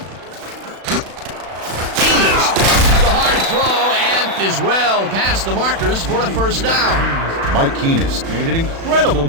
Is well past the markers for a first down. Mike Keenest made an incredible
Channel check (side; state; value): left; late; 36 ms